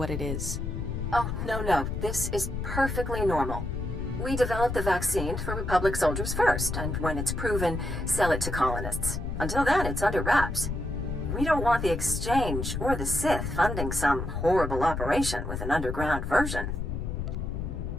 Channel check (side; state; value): left; noise; rumble, 4 dB below the sound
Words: it is. Oh, no. This is perfectly normal. We developed the vaccine for Republic soldiers first, and when it's proven, sell it to colonists. Until then, it's under wraps. We don't want the Exchange or the Sith funding some horrible operation with an underground version.